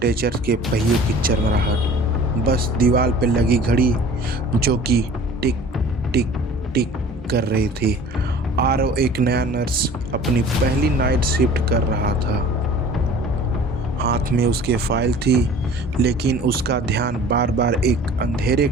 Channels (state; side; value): normal; both; correlation 0.46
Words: के पहियों की चरमराहट, बस दीवार पे लगी घड़ी जो कि टिक टिक टिक कर रही थी। आरव एक नया नर्स अपनी पहली नाइट शिफ्ट कर रहा था। हाथ में उसके फाइल थी, लेकिन उसका ध्यान बार बार एक अंधेरे